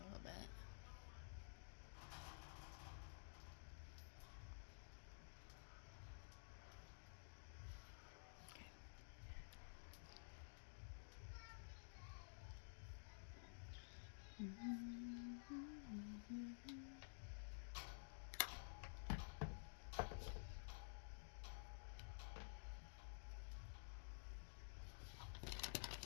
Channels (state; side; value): silent; right; digital silence